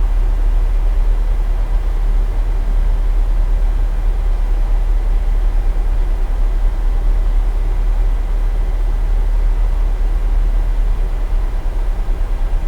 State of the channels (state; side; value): identical; both; correlation 1.00